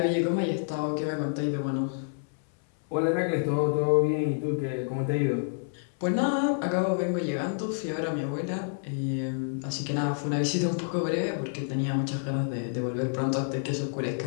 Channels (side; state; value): right; silent; 59 dB below the other